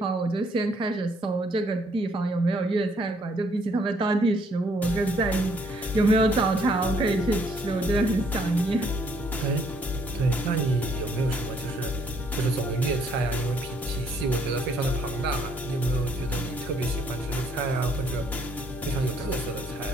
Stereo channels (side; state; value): both; normal; correlation 0.67